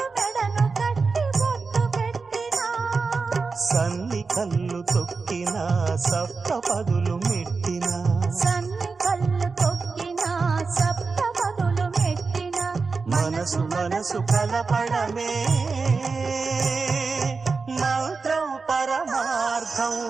మెడను కట్టి బొట్టు పెట్టినా, సన్ని కళ్ళు తొక్కినా సప్త పదులు మెట్టినా, సన్ని కళ్ళు తొక్కినా సప్త పదులు మెట్టినా, మనసు మనసు కలపడమే మంత్రం పరమార్థం.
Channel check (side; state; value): left; quieter; 4.5 dB